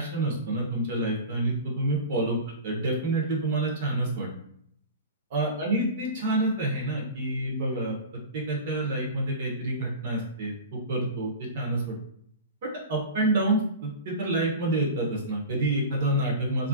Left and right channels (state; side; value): inverted; both; correlation -0.32